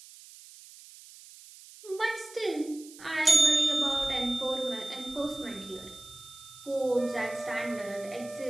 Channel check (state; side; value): noise; right; hiss, 19 dB below the sound